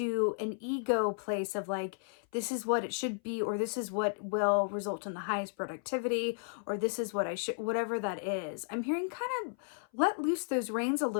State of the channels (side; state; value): right; silent; 55 dB below the other